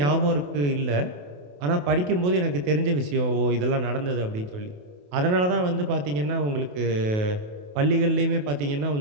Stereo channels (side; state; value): left; late; 28 ms